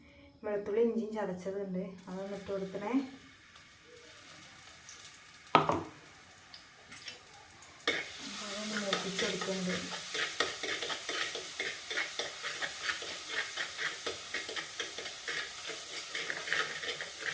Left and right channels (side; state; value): both; identical; correlation 1.00